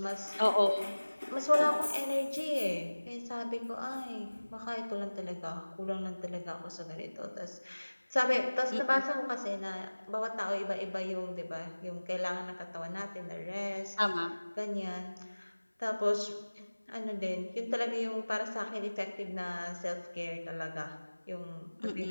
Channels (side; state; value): both; inverted; correlation -1.00